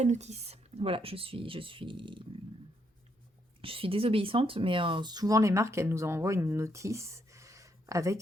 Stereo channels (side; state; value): both; normal; correlation 0.75